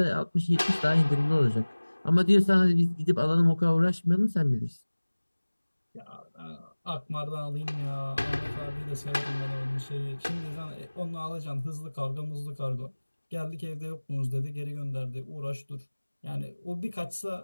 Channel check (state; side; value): inverted; both; correlation -1.00